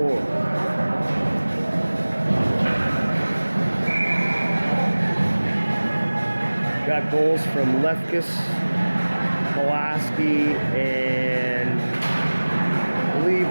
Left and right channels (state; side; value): inverted; both; correlation -1.00